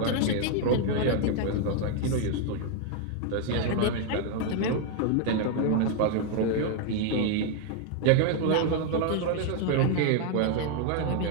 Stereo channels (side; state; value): both; different; correlation 0.00